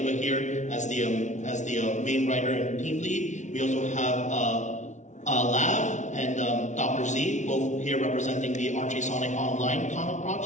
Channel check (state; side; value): late; right; 0.35 ms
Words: here as the main writer and team lead. We also have Lav and Dr. Z, both here representing the Archie Sonic Online comic